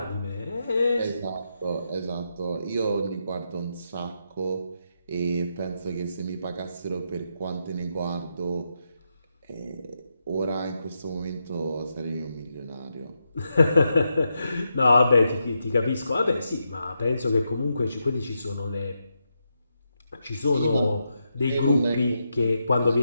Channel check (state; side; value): inverted; both; correlation -0.84